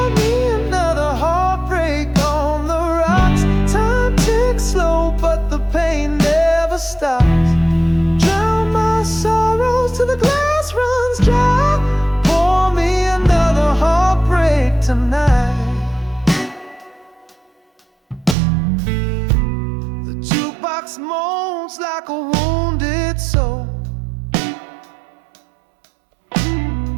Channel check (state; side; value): drops out; left; at 18.4 s